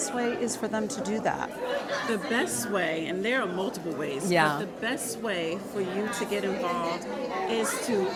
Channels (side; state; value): both; identical; correlation 1.00